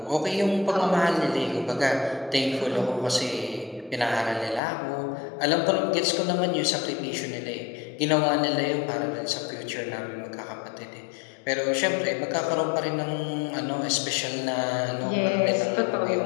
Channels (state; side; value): drops out; right; at 4.6 s